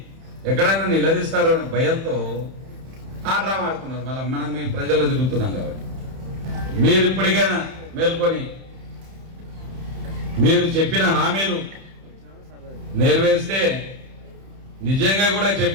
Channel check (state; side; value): late; left; 31 ms